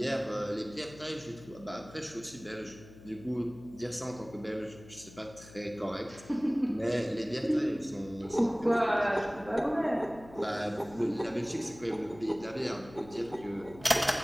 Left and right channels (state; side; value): noise; left; hum, 19 dB below the sound